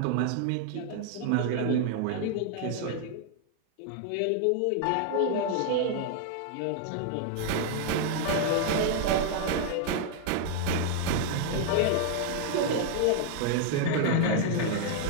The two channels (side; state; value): both; different; correlation 0.00